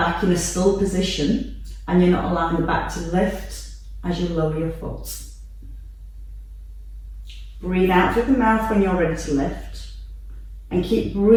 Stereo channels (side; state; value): both; identical; correlation 1.00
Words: in a still position and you're not allowing the back to lift as you lower your foot. Breathe out through the mouth when you're ready to lift and keep